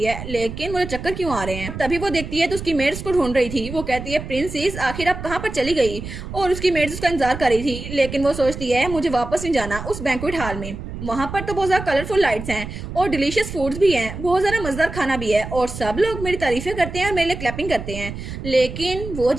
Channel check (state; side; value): noise; right; rumble, 9 dB below the sound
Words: है, लेकिन मुझे चक्कर क्यों आ रहे हैं। तभी वो देखती है तो उसकी मेड्स को ढूंढ रही थी। वो कहती है प्रिंसेस आखिर आप कहाँ पर चली गई, और उसकी मेड्स उसका इंतजार कर रही थी, लेकिन वो सोचती है मुझे वापस नहीं जाना उस बैंक्वेट हॉल में। वहाँ पर तो बहुत ज़्यादा कलरफुल लाइट्स हैं और डिलीशियस फूड्स भी हैं, बहुत ज़्यादा मज़ेदार खाना भी है, और सब लोग मेरी तारीफ़ें करते हैं और मेरे लिए क्लैपिंग करते हैं। लेकिन वो